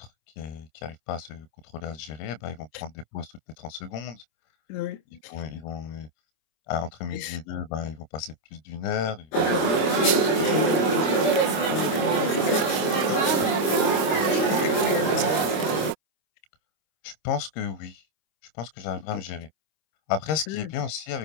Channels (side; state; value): right; late; 26 ms